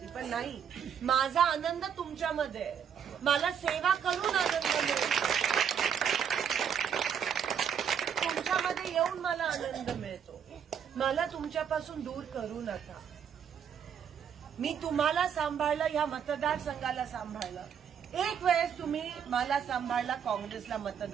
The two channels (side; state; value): left; quieter; 8.0 dB